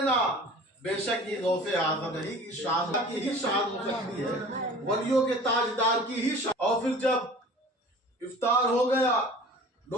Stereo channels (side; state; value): both; normal; correlation 0.43